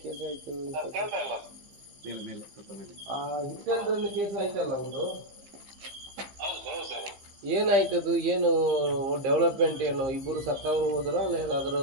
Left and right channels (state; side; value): late; left; 15 ms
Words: ಕೇಸ್ ಆಯ್ತು? ಆ ಹಿಟ್ ಅಂಡ್ ರನ್ ಕೇಸ್ ಆಯ್ತಲ್ಲ ಒಂದು, ಏನಾಯ್ತದು? ಏನು ಡೆವಲಪ್ಮೆಂಟ್? ಏನು ಇಬ್ಬರು ಸತ್ತವರು ಹೋದ್ರ ಅಲ್ಲ ಏನಾದ್ರು